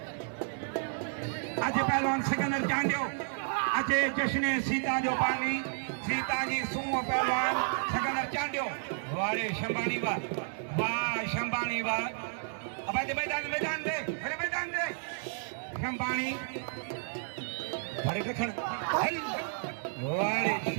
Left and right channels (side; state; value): left; silent; digital silence